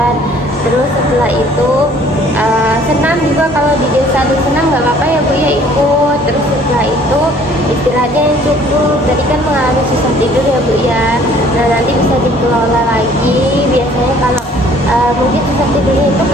Terus setelah itu senam juga, kalau di desa ada senam nggak apa-apa ya bu ya, ikut. Terus setelah itu istirahatnya yang cukup, tadi kan mengalami susah tidur ya bu ya. Nah nanti bisa dikelola lagi. Biasanya kalau mungkin susah tidurnya itu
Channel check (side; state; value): both; normal; correlation 0.56